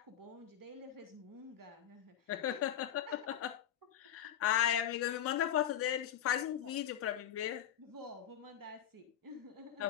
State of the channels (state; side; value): quieter; right; 10.4 dB